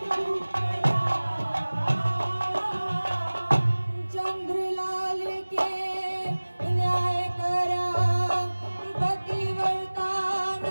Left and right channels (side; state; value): both; inverted; correlation -1.00